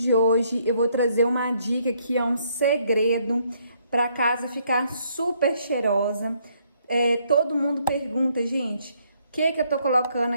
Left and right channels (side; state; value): both; inverted; correlation -0.70